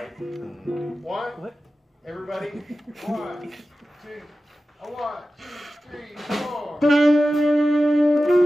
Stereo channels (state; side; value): normal; both; correlation 0.94